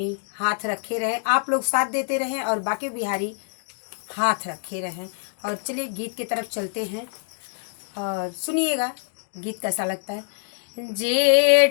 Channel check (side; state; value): right; silent; digital silence